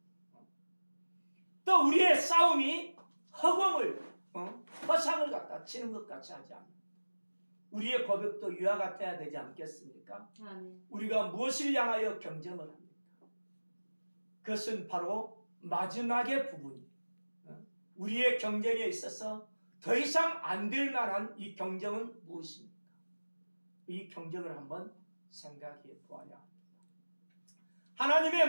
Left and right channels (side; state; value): both; inverted; correlation -1.00